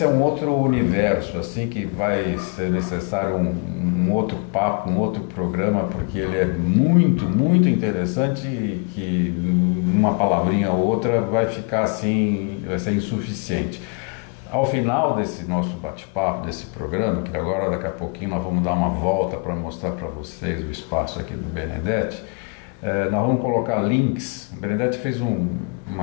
é um outro universo, assim, que vai ser necessário um outro papo, um outro programa, porque ele é muito, muito interessante e que uma palavrinha ou outra vai ficar assim, vai ser insuficiente. Ao final desse nosso bate-papo, desse programa, que agora daqui a pouquinho nós vamos dar uma volta para mostrar para vocês o espaço aqui do Benedetti, nós vamos colocar links. O Benedetti fez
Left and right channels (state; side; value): quieter; right; 34.2 dB